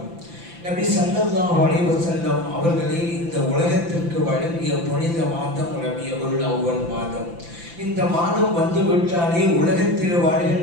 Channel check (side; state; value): left; late; 5.9 ms